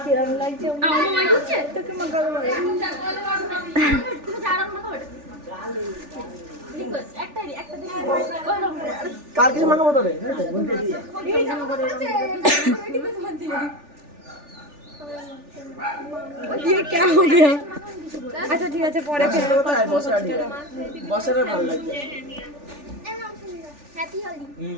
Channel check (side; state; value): left; late; 3.4 ms